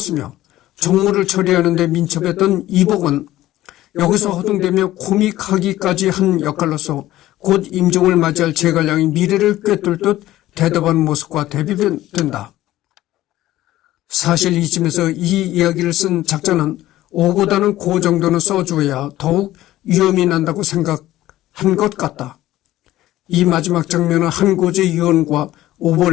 종무를 처리하는 데 민첩했던 이복은 여기서 허둥대며 코믹하기까지 한 역할로서 곧 임종을 맞이할 제갈량의 미래를 꿰뚫 듯 대답하는 모습과 대비된다. 사실 이쯤에서 이 이야기를 쓴 작자는 오보다는 고 정도는 써주어야 더욱 위험이 난다고 생각한 것 같다. 이 마지막 장면은 한고제 유언과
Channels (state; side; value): quieter; right; 15.1 dB